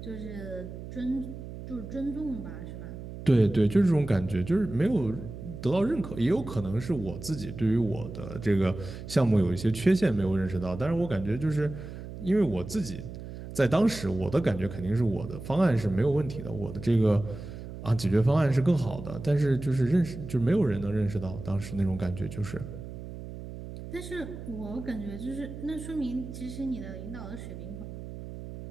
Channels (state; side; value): noise; right; hum, 11 dB below the sound